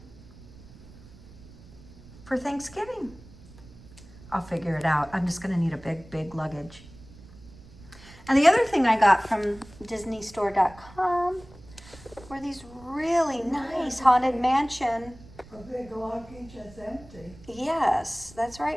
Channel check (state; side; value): noise; right; rumble, 20 dB below the sound